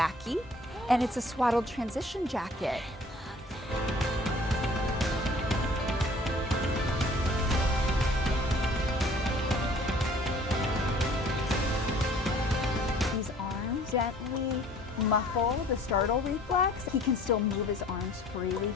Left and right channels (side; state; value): both; normal; correlation 0.53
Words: and it's a swaddled transition jacket. These arms gently muffle the startle reflex. He can still move his arms freely.